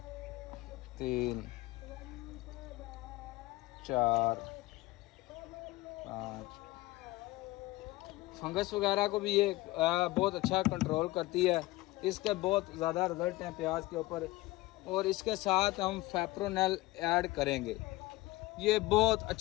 3 4 5। फंगस वगैरह को भी ये बहुत अच्छा कंट्रोल करती है। इसके बहुत ज़्यादा रिजल्ट हैं प्याज के ऊपर। और इसके साथ हम फेप्रोनेल ऐड करेंगे। ये बहुत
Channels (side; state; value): right; quieter; 19.6 dB